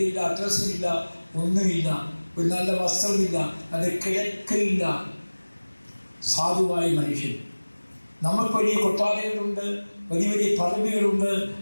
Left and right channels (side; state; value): both; inverted; correlation -1.00